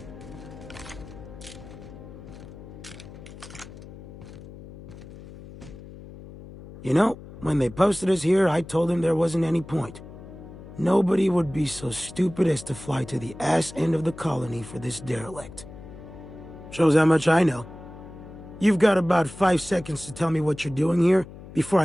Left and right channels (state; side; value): noise; left; hum, 16 dB below the sound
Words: You know, when they posted us here, I told them there wasn't any point. Nobody would be so stupid as to fly to the ass end of the colony for this derelict. Shows how much I know. You've got about 5 seconds to tell me what you're doing here before